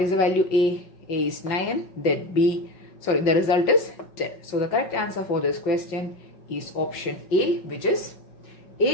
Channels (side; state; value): right; late; 5.4 ms